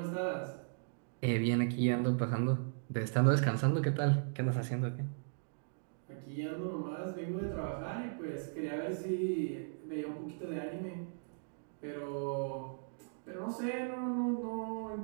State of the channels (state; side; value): silent; left; digital silence